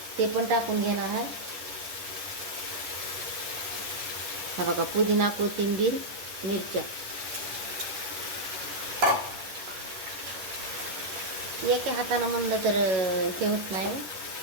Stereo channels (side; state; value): left; late; 10 ms